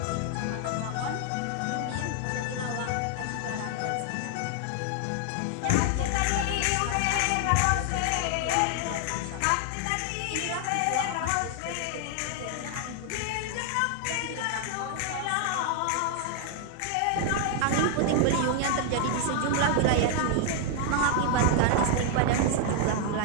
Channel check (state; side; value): different; both; correlation 0.00